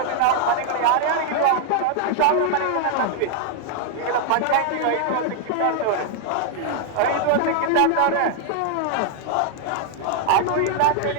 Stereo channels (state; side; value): different; both; correlation 0.00